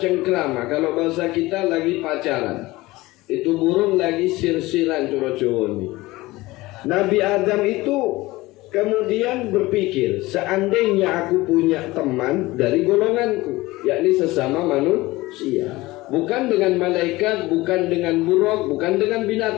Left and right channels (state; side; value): quieter; right; 19.8 dB